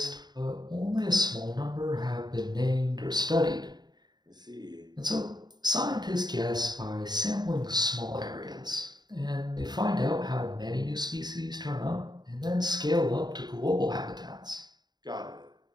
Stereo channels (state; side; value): late; left; 0.20 ms